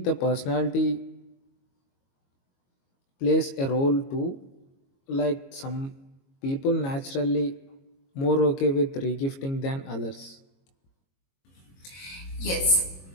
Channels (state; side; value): late; right; 22 ms